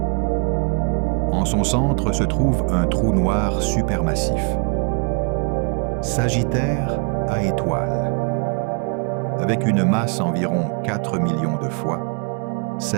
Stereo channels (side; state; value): left; quieter; 37.6 dB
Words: En son centre se trouve un trou noir supermassif, Sagittaire à étoile, avec une masse environ 4 millions de fois